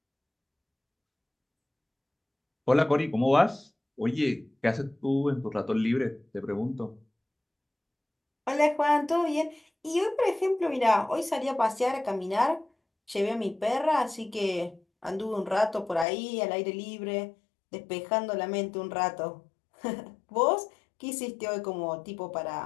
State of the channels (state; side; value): drops out; right; at 16.1 s